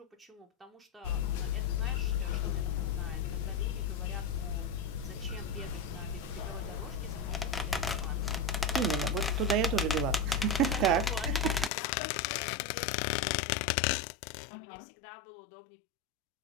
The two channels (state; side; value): drops out; right; at 11.7 s